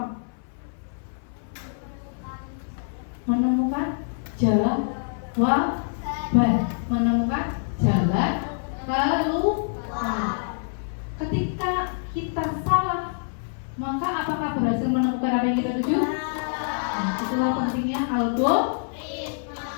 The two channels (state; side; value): silent; right; 55 dB below the other